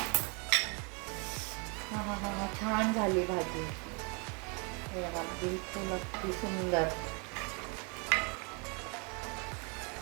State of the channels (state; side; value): quieter; left; 33.8 dB